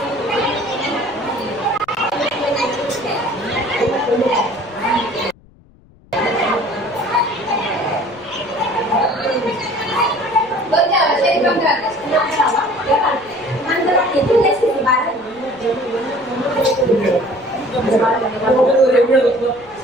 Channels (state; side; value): noise; left; rumble, 27 dB below the sound